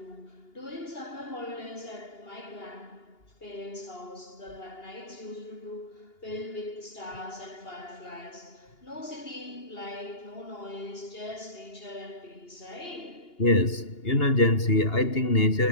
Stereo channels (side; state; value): right; late; 2.8 ms